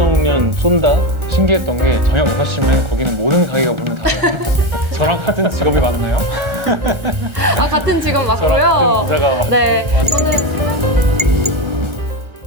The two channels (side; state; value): left; late; 1.4 ms